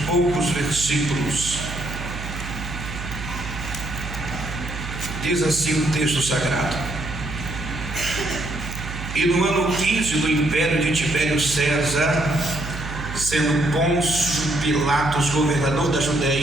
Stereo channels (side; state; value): right; noise; hum, 9 dB below the sound